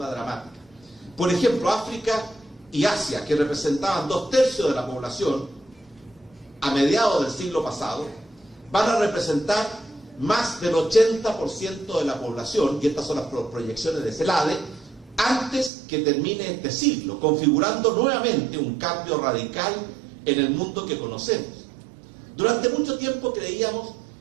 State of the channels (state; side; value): drops out; left; at 15.7 s